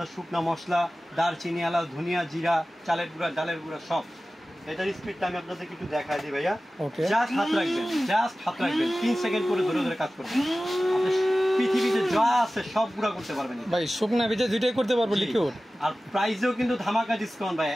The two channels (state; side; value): normal; both; correlation 0.96